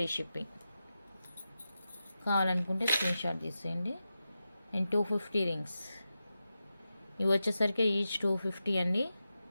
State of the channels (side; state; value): both; inverted; correlation -0.91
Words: షిప్పింగ్. కావాలనుకుంటే స్క్రీన్ షాట్ తీసేయండి. And 250 rings. ఇవి వచ్చేసరికి ఈచ్ 250 అండి.